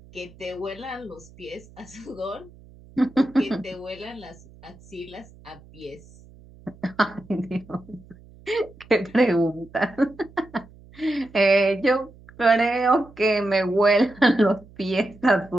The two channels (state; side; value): noise; right; hum, 23 dB below the sound